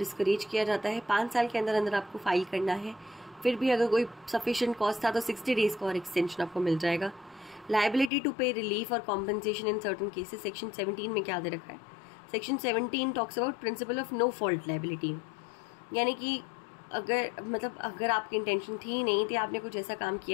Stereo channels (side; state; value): right; drops out; at 8.1 s